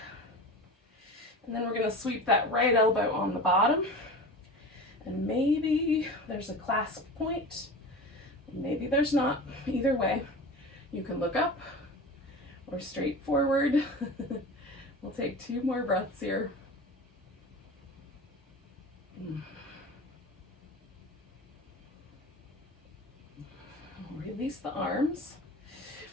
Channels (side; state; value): both; normal; correlation 0.33